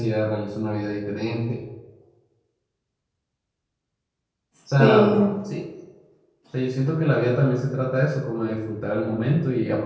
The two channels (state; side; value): identical; both; correlation 1.00